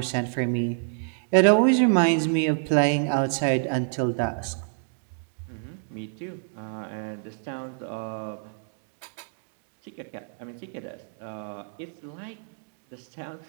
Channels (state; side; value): silent; left; 59 dB below the other